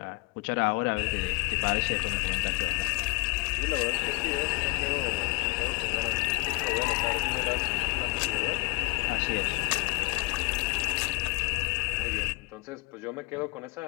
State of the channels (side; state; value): right; quieter; 26.4 dB